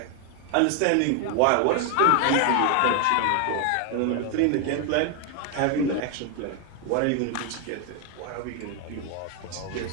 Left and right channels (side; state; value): both; different; correlation 0.01